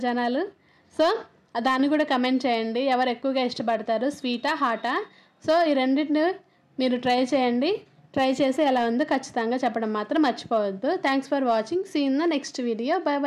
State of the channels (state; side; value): identical; both; correlation 1.00